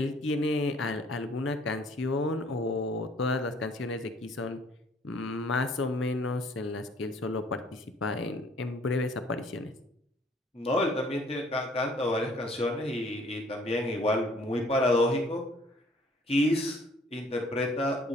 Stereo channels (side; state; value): both; normal; correlation 0.58